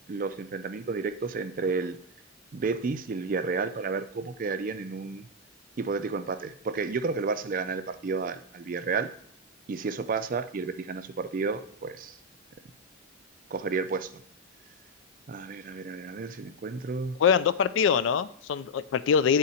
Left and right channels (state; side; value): normal; both; correlation -0.03